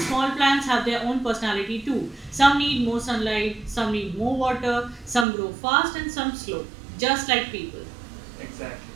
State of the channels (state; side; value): drops out; left; at 5.2 s